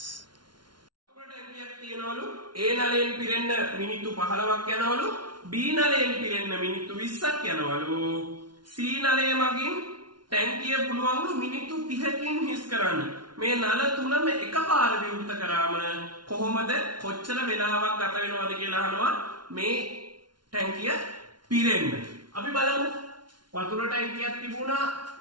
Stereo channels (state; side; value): late; left; 0.71 ms